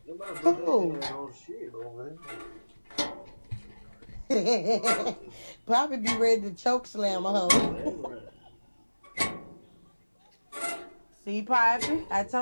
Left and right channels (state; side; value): inverted; both; correlation -1.00